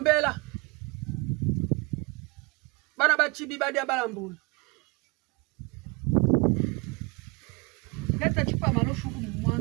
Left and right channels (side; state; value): left; quieter; 28.4 dB